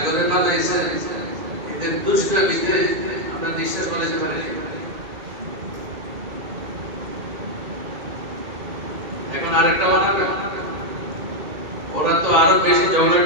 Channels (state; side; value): late; left; 1.8 ms